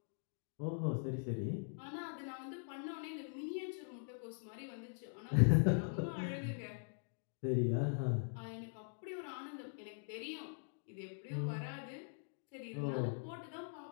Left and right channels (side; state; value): right; silent; digital silence